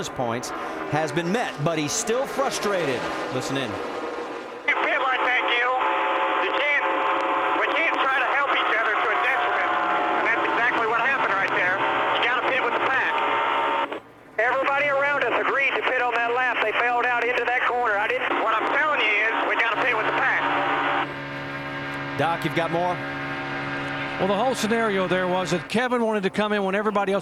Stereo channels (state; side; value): identical; both; correlation 1.00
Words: points, has been met. But he's still frustrated. Listen in. Doc, you've got more? Well, the whole scenario there was that Kevin wanted to come in when everybody